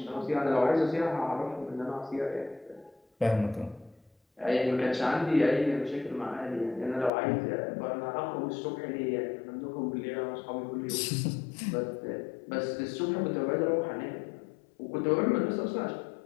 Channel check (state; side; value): drops out; right; at 7.1 s